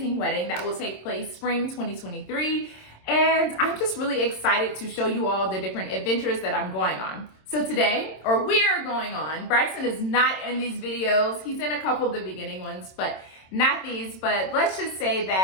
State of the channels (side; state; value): right; late; 26 ms